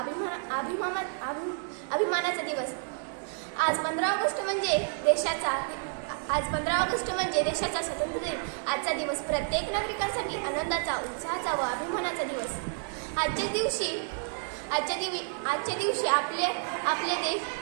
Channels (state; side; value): silent; left; 58 dB below the other